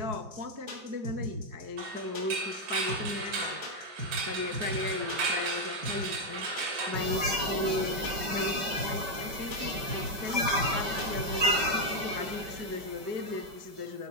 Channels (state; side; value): late; left; 5.1 ms